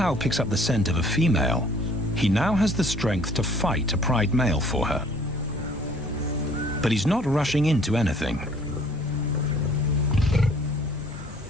picks up the scent of a female, he now has the strength to fight a pride male for her. But he's not rushing into anything.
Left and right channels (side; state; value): both; normal; correlation 0.56